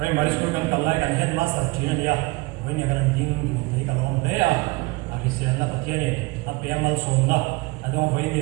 school kan kallai kan headmaster thina ania hoi ne kan ding du te ka lom te a hisian na Pathian ni apeamal som na adong hoi ni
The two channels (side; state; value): left; quieter; 23.4 dB